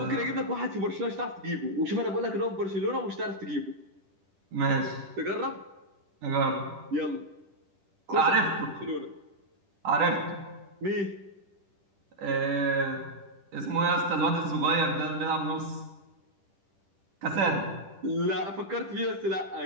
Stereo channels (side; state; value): left; late; 10 ms